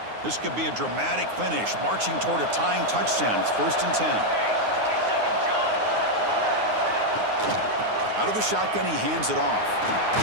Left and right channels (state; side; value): late; left; 9.6 ms